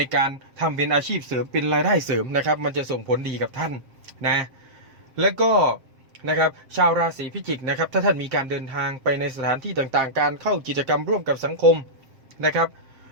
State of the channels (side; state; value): left; late; 7.5 ms